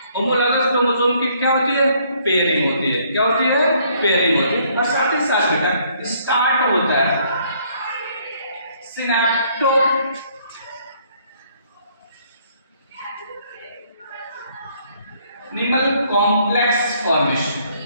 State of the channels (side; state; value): both; inverted; correlation -0.65